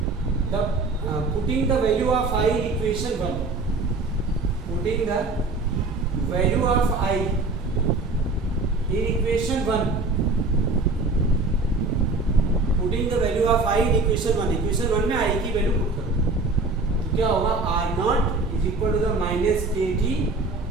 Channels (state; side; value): quieter; left; 3.4 dB